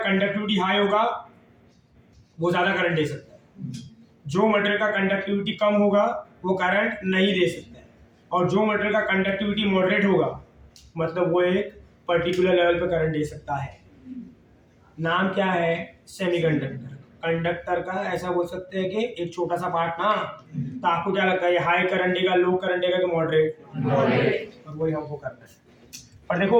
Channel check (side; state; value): both; identical; correlation 1.00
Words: हाई होगा वो ज्यादा करंट दे सकता है, जो मटेरियल का कंडक्टिविटी कम होगा वो करंट नहीं दे सकता है, और जो मटेरियल का कंडक्टिविटी मॉडरेट होगा मतलब वो एक पर्टिकुलर लेवल पे करंट दे सकता है। नाम क्या है, सेमीकंडक्टर। कंडक्टर का ऐसा बोल सकते हैं कि एक छोटा सा पार्ट ना। तो आपको क्या लगता है, ये हाई करंट देगा, लो करंट देगा कि मॉडरेट, और वही हमको करना है। और देखो